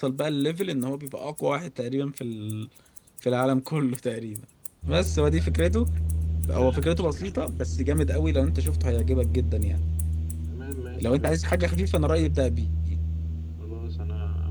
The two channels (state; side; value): identical; both; correlation 1.00